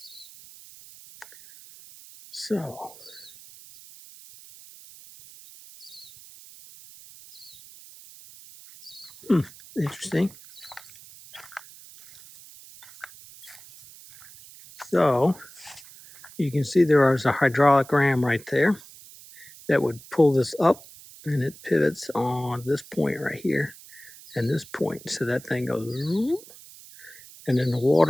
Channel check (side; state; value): right; noise; hiss, 20 dB below the sound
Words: So interesting. So you can see there is a hydraulic ram right there that would pull this up, and it pivots on this point right here and this point. So that thing goes, and then the